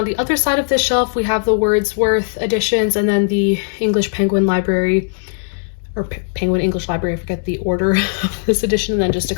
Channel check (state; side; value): silent; right; digital silence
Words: the other side of this shelf, we have the Wordsworth editions, and then the English Penguin Library, or Penguin English Library, I forget the order of this edition, and then just a